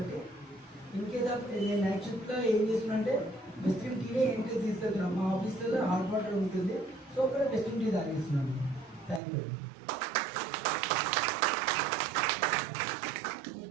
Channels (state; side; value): drops out; left; at 9.2 s